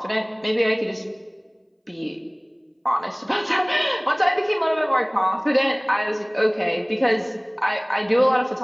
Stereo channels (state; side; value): identical; both; correlation 1.00